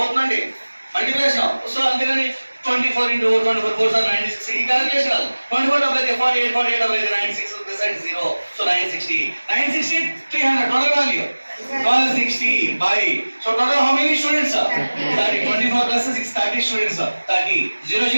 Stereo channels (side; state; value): both; inverted; correlation -1.00